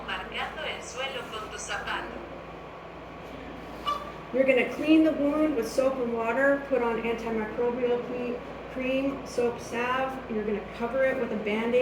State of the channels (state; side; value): identical; both; correlation 1.00